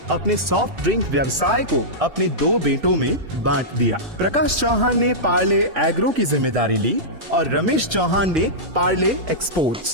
अपने सॉफ्ट ड्रिंक व्यवसाय को अपने 2 बेटों में बांट दिया। प्रकाश चौहान ने पार्ले एग्रो की जिम्मेदारी ली और रमेश चौहान ने पार्ले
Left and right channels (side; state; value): left; late; 3.1 ms